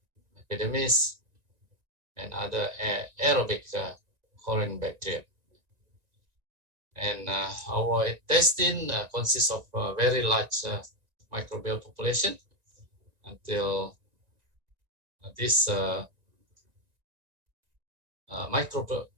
epidermis, and other aerobic colon bacteria. And our intestine consists of a very large microbial population until this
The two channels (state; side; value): late; left; 1.9 ms